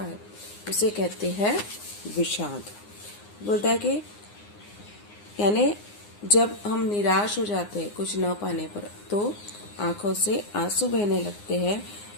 उसे कहते हैं विषाद। बोलता है कि यानी जब हम निराश हो जाते हैं कुछ न पाने पर तो आंखों से आंसू बहने लगते हैं,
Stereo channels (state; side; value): late; right; 9.7 ms